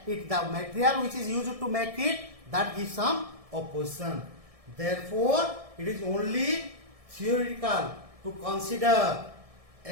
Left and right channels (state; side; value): late; left; 1.6 ms